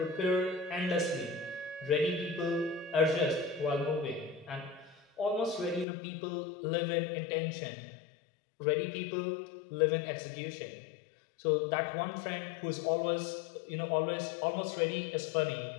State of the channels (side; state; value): right; drops out; at 5.9 s